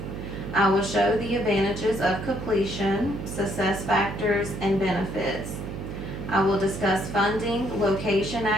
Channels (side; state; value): right; noise; hum, 7 dB below the sound